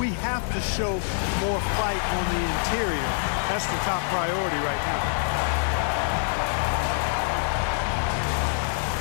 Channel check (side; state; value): right; silent; digital silence